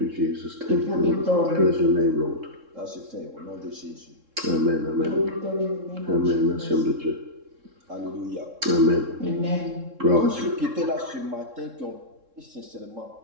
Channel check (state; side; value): late; left; 3.7 ms